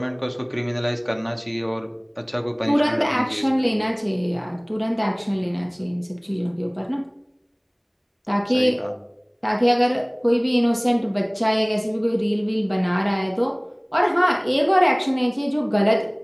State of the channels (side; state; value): both; identical; correlation 1.00